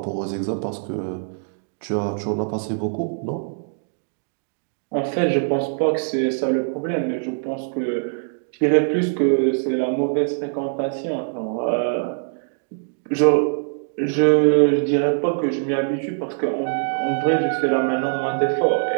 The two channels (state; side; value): silent; left; digital silence